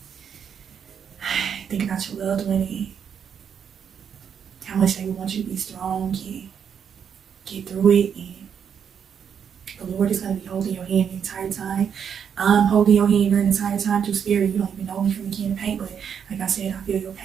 Think about your loved one and how much they want you to be strong and get through it. And the Lord is going to be holding your hand the entire time. I'm holding your hand during the entire time through spirit. You don't even know me from the can of paint, but like I said, I feel your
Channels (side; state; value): left; quieter; 7.7 dB